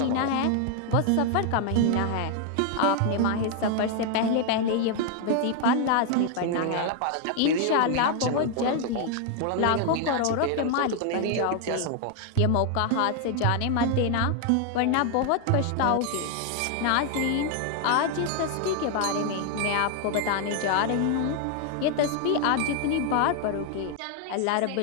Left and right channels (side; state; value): both; different; correlation 0.00